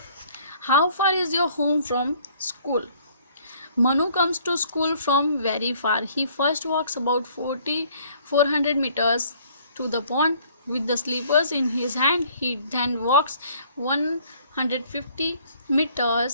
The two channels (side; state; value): both; inverted; correlation -0.59